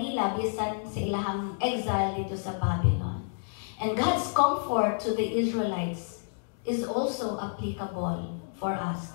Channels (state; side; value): silent; right; digital silence